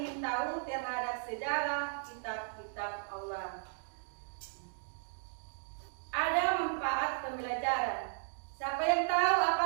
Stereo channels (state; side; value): silent; left; digital silence